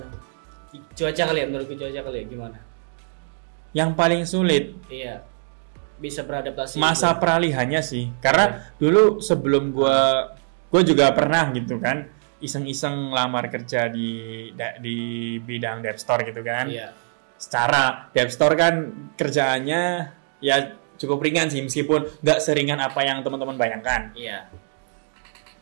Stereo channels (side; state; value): left; silent; digital silence